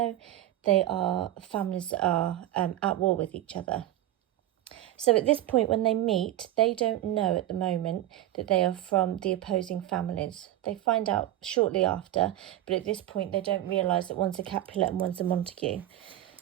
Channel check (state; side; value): quieter; left; 13.7 dB